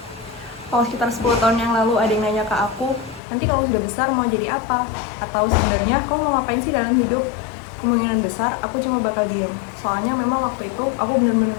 Kalau sekitar 10 tahun yang lalu ada yang nanya ke aku, nanti kalau sudah besar mau jadi apa? Atau sebenarnya kamu mau ngapain sih dalam hidup? Kemungkinan besar aku cuma bakal diem. Soalnya memang waktu itu aku benar-benar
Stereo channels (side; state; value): right; drops out; at 3.2 s